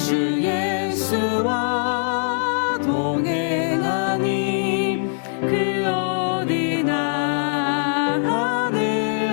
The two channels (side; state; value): right; silent; 64 dB below the other